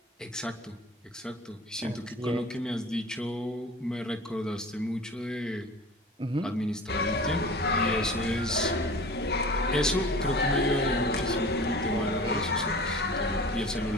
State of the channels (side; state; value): both; normal; correlation 0.39